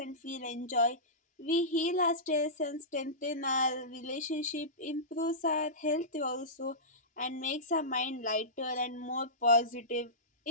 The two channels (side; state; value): both; normal; correlation -0.18